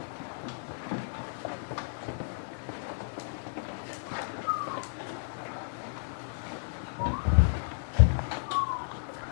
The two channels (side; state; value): right; silent; digital silence